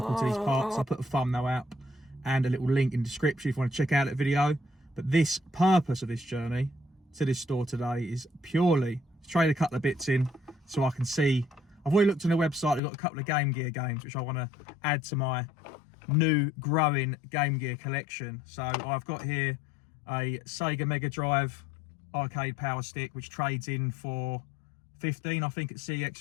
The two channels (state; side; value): drops out; right; at 12.8 s